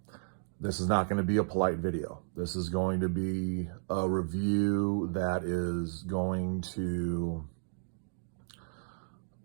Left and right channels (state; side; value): silent; left; digital silence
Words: This is not going to be a polite video. This is going to be a review that is going to